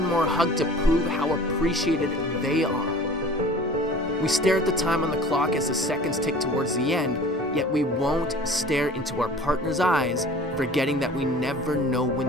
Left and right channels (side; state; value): both; normal; correlation 0.45